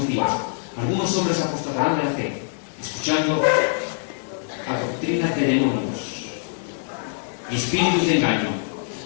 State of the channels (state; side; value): silent; right; digital silence